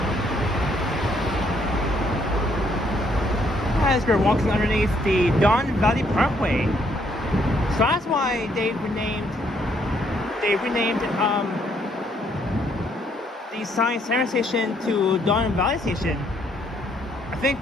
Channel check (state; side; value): normal; both; correlation 0.69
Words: As we're walking underneath the Don Valley Parkway, so that's why they renamed the Science Center station to Don Valley Station. I think